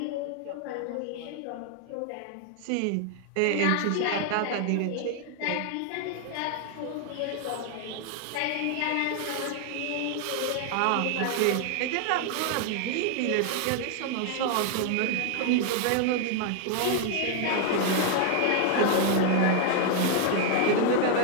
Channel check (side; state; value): both; different; correlation 0.00